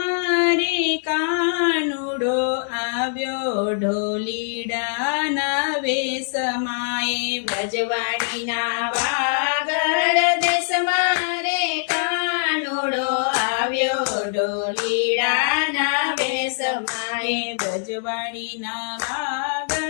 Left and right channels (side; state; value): right; silent; digital silence